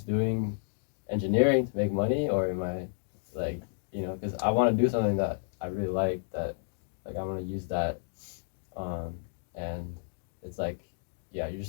doing engineering to make money, or am I like because I want to do something that I really like, that like I want to use that, and it's like you're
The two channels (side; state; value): right; silent; digital silence